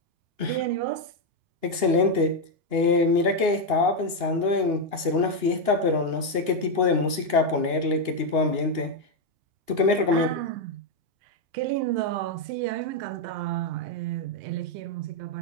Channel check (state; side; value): late; left; 2.8 ms